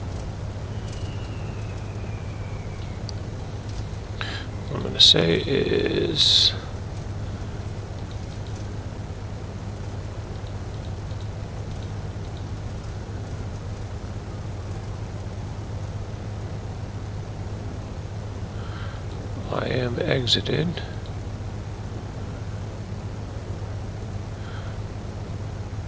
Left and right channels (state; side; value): identical; both; correlation 1.00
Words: What I'm going to say is I am exited.